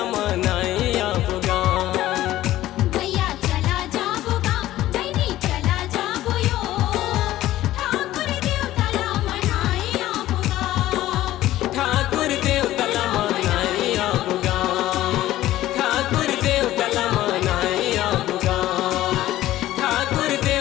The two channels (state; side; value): quieter; right; 14.8 dB